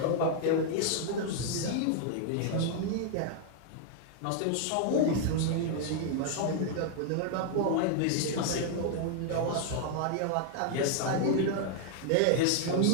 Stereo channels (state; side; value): different; both; correlation 0.00